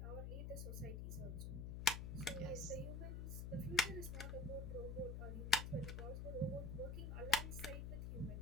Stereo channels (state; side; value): noise; left; hum, 4 dB below the sound